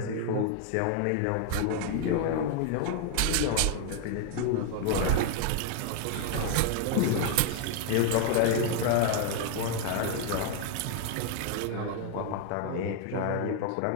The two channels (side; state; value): both; different; correlation 0.00